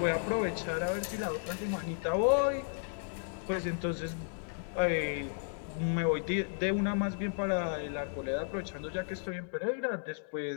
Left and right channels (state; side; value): silent; right; 55 dB below the other